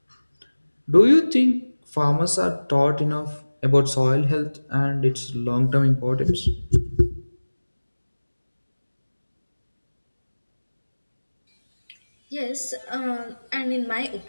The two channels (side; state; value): both; inverted; correlation -1.00